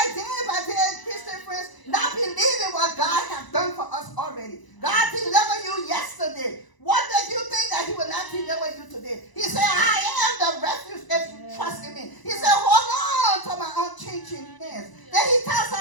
day by day, Christian friends, not believing what God has done for us already. God delivered you yesterday. What did you think that he will not deliver you today? He said, I am the refuge if you trust in me. He said, hold on to my unchanging hands. Then he tells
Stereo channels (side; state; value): right; late; 1.0 ms